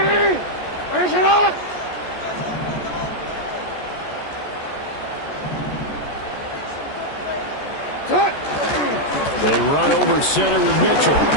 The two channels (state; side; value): late; right; 14 ms